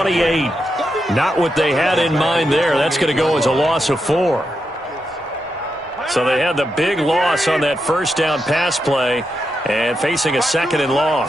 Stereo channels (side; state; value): both; normal; correlation 0.85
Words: Not what they had in mind there. That's going to go as a loss of 4. So they had the big loss on that first down pass play and facing a 2nd and long.